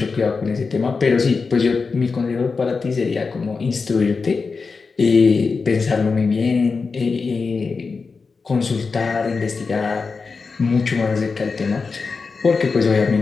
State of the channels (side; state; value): right; quieter; 4.7 dB